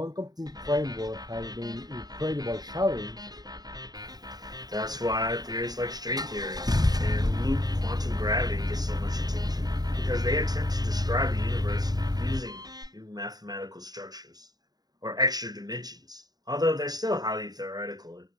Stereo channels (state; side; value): late; left; 0.19 ms